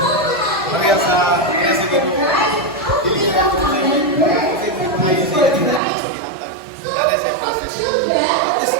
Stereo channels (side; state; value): left; drops out; at 5.8 s